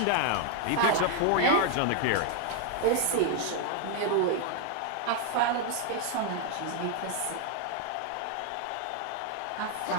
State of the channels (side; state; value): both; different; correlation 0.00